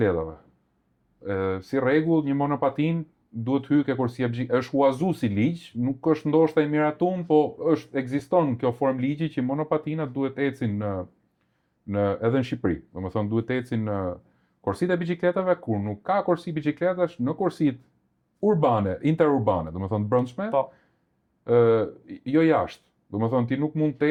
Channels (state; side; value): identical; both; correlation 1.00